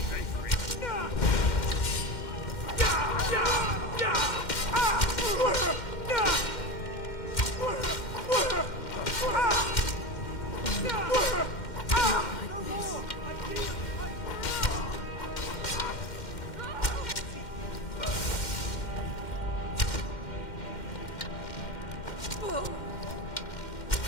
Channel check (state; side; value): late; right; 2.1 ms